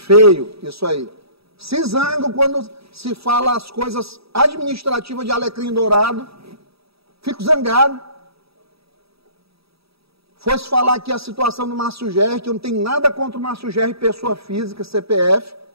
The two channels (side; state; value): left; late; 0.77 ms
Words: isso aí. Se zango quando se fala as coisas administrativas de Alecrim Dourado. Fico zangado. Fosse falar aqui a situação do Márcio Gerri, que eu não tenho nada contra o Márcio Gerri, pessoa física, CPF,